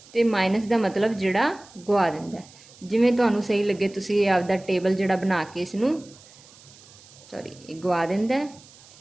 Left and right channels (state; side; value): noise; right; hiss, 23 dB below the sound